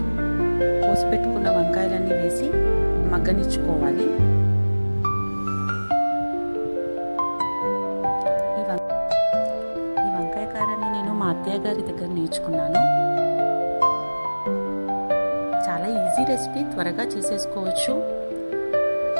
కోసి పెట్టుకున్న వంకాయలన్నీ వేసి మగ్గనిచ్చుకోవాలి. మా అత్తయ్య గారి దగ్గర నేర్చుకున్నాను. చాలా ఈజీ రెసిపీ, త్వరగా చేసేసుకోవచ్చు.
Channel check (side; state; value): both; inverted; correlation -1.00